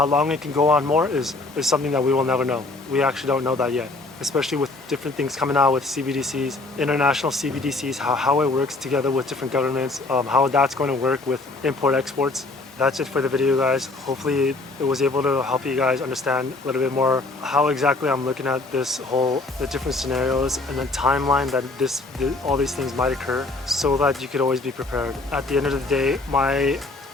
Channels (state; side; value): quieter; right; 3.2 dB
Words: long it can go on more is something that we will never know. We actually don't know that yet, especially with different things coming out with CBDCs, international CBDCs, how it works together with different governments, how that's going to work with import-exports. That's it for the video, guys. Hopefully it was able to help you guys understand a little bit more how exactly I'm looking at the different scenarios and the timeline that all these things might occur, so that you could always be prepared. At the end of the day, my